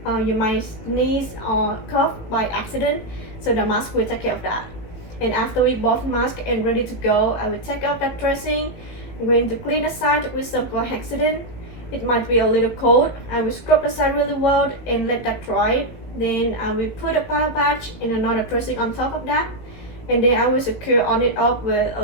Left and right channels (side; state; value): right; late; 18 ms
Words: You might sneeze or cough by accident, so the mask will take care of that. And after we both mask and ready to go, I will take out that dressing. I'm going to clean the side with some chlorhexidine. It might be a little cold. I will scrub the side really well and let that dry. Then I will put a bio patch and another dressing on top of that. And then I will secure on it up with a